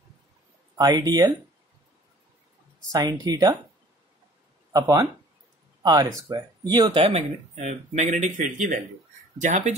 I D L sine theta upon R square. ये होता है मैग्नेटिक फील्ड की वैल्यू। जहां पे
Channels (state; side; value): normal; both; correlation 0.52